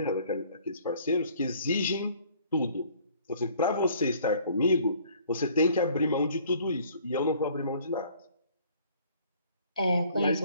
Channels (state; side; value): inverted; both; correlation -0.57